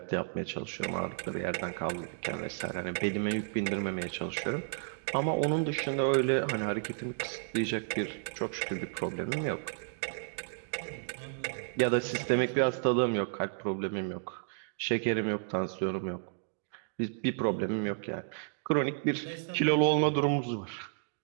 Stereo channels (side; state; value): left; silent; digital silence